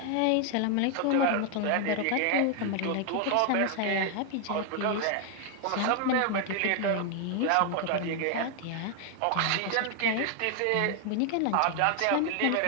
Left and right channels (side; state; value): both; different; correlation 0.00